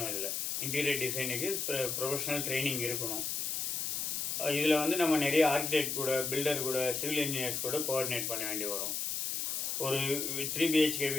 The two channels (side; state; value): left; noise; hiss, 1 dB below the sound